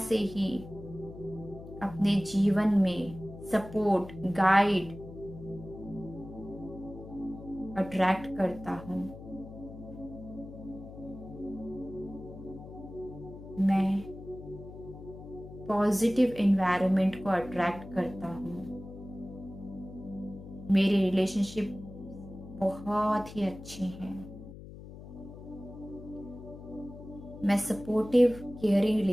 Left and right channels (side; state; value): left; noise; hum, 14 dB below the sound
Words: ही अपने जीवन में सपोर्ट, गाइड अट्रैक्ट करता हूँ, मैं पॉजिटिव एनवायरनमेंट को अट्रैक्ट करता हूँ, मेरे रिलेशनशिप बहुत ही अच्छे हैं, मैं सपोर्टिव केयरिंग